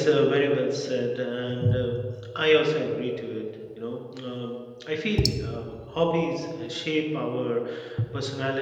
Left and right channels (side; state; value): both; identical; correlation 1.00